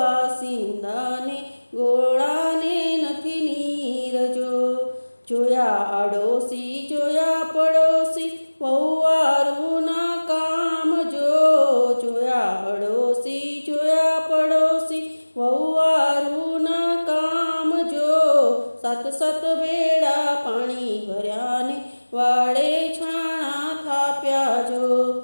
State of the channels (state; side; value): inverted; both; correlation -1.00